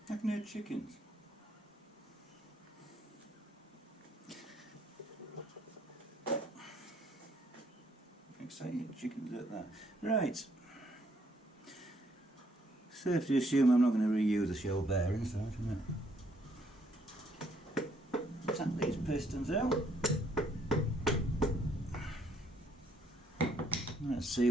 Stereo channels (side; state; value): both; normal; correlation 0.68